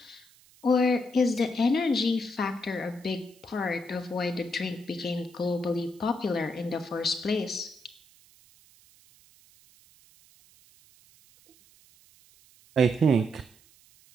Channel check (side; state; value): right; noise; hiss, 28 dB below the sound